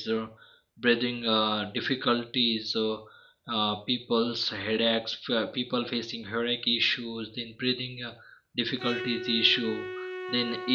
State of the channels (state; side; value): identical; both; correlation 1.00